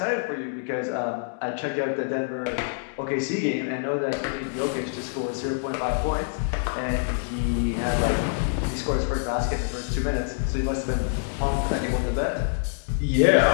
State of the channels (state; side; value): silent; right; 61 dB below the other